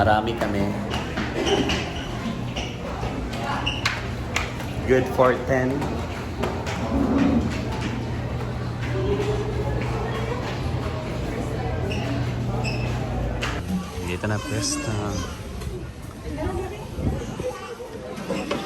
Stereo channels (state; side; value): identical; both; correlation 1.00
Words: kami. Good for 10. Dito na pwesto.